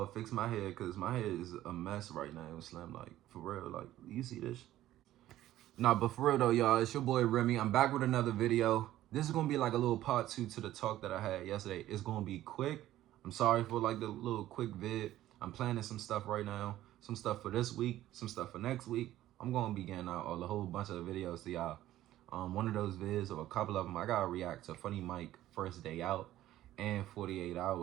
fix my head, because my head is a mess right now. It was slim, like, for real. Like, you see this? Nah, but for real though, y'all, it's your boy Remy. I'm back with another video. This is gonna be like a little part 2 to the talk that I had yesterday. It's gonna be quick. I'm sorry for like the little quick vid. I'm planning some stuff right now. Some stuff for this week, some stuff for next week. I'm gonna be getting out a whole bunch of videos to y'all. One of those vids, or a couple of them, I gotta react to Funny Mike First Day Out and 48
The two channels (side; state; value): left; quieter; 14.0 dB